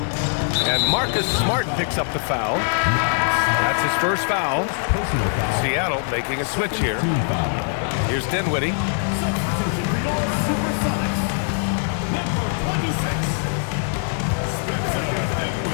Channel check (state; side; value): silent; right; 64 dB below the other